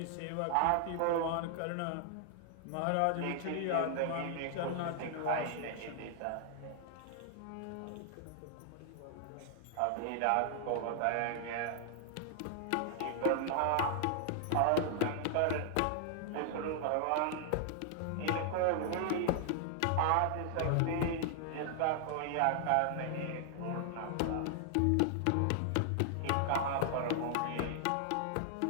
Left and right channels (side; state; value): both; different; correlation 0.00